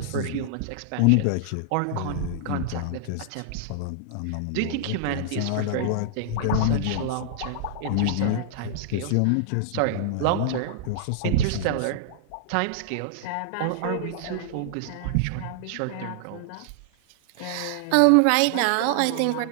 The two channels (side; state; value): both; different; correlation -0.01